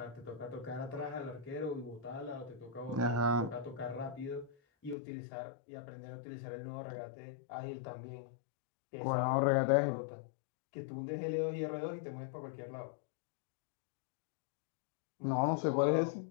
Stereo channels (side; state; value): right; drops out; at 5.0 s